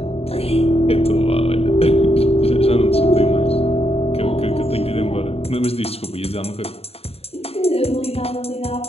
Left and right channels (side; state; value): right; late; 0.29 ms